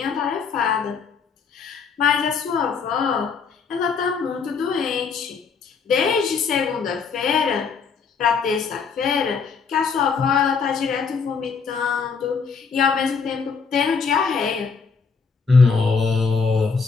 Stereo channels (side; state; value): right; quieter; 5.5 dB